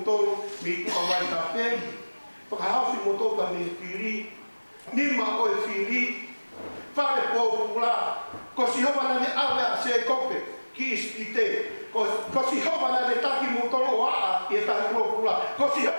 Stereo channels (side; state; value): both; inverted; correlation -1.00